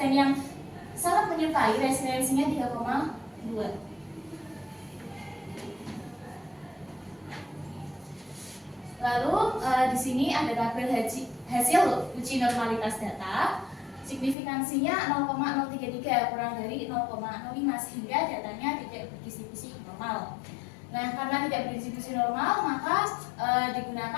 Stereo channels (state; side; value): drops out; right; at 14.4 s